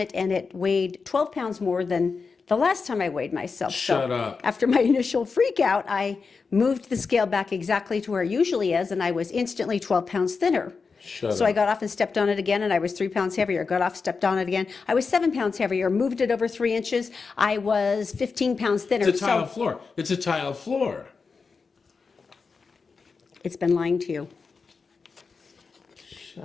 and it weighed 12 pounds more than the last time I weighed myself. Shut up. After my initial freak out, I moved the scale back exactly to where it usually is, and I was instantly 12 pounds thinner. So I got off and stepped on it again, and I was 3 pounds heavier. Got off, stepped on it again. I was 7 pounds heavier. Moved it over 3 inches. I was 15 pounds thinner. It's a tile floor. It's a tile floor. It's been lying to you. Shut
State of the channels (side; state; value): right; quieter; 4.8 dB